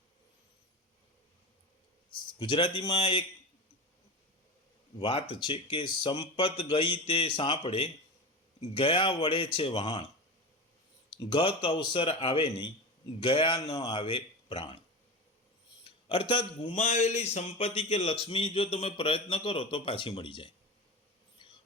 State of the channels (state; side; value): normal; both; correlation 0.25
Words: ગુજરાતીમાં એક વાત છે કે સંપત ગઈ તે સાંપડે, ગયા વળે છે વહાણ, ગત અવસર આવે નહીં, ગયા ન આવે પ્રાણ. અર્થાત ગુમાવેલી સંપત્તિ કે લક્ષ્મી જો તમે પ્રયત્ન કરો તો પાછી મળી જાય,